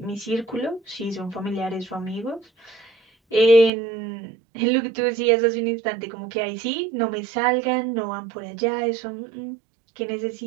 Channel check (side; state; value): left; drops out; at 3.7 s